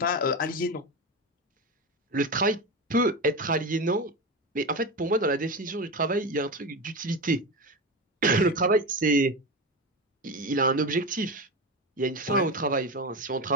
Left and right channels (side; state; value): both; normal; correlation 0.20